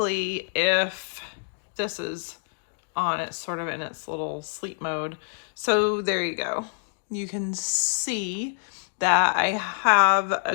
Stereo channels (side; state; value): right; silent; digital silence